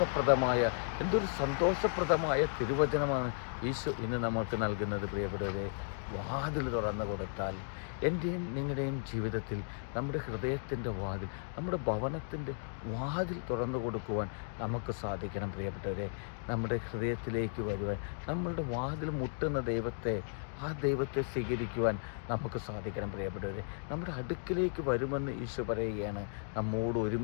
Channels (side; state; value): right; silent; digital silence